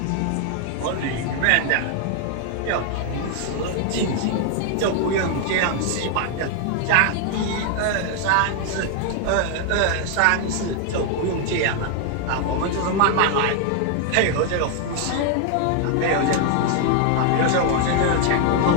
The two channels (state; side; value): different; both; correlation 0.01